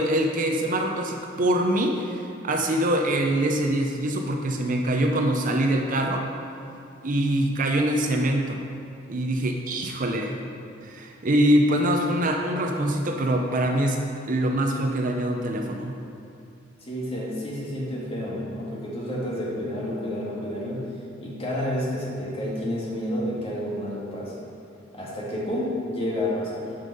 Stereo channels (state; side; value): normal; both; correlation 0.58